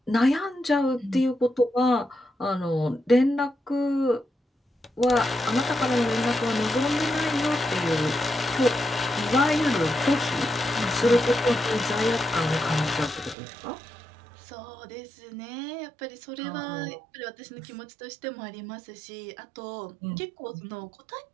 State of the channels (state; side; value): drops out; left; at 13.4 s